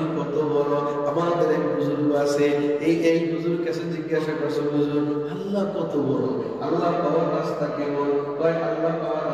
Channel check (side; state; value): both; identical; correlation 1.00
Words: কত বড়। আমাদের এক বুজুর্গ আছে, এই বুজুর্গ কাছে জিজ্ঞাসা করছে, হুজুর আল্লাহ কত বড়, আল্লাহ পাওয়ার রাস্তা কেমন? কয় আল্লাহ পাওয়ার